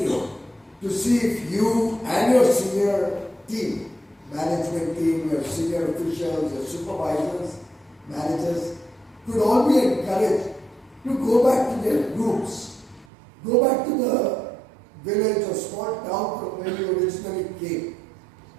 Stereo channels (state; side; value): drops out; left; at 13.1 s